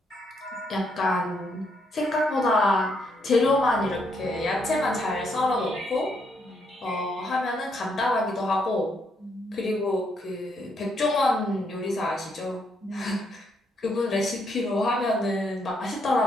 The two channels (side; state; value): both; normal; correlation 0.75